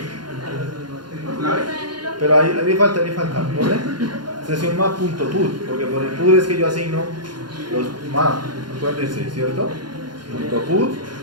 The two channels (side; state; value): left; late; 0.71 ms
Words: ¿Clave? Pero ahí le falta, ¿pone? Sesión map.put, porque por el put es que yo asigno los map, acuérdense, ¿cierto? .put,